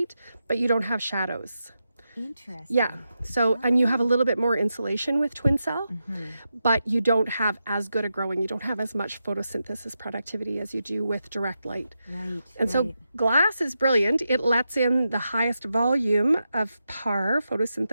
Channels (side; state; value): both; inverted; correlation -0.87